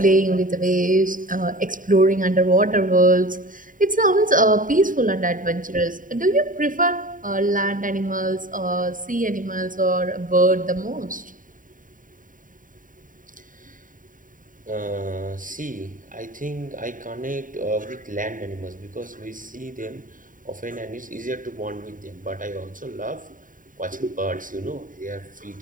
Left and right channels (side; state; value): left; late; 0.39 ms